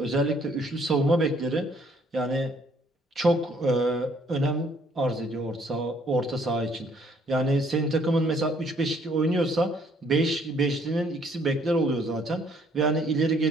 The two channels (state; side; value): normal; both; correlation 0.64